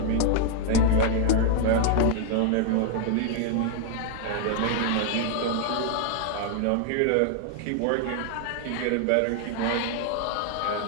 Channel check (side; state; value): both; different; correlation 0.00